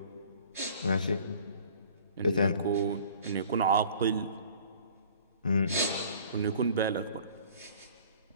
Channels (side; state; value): both; inverted; correlation -0.50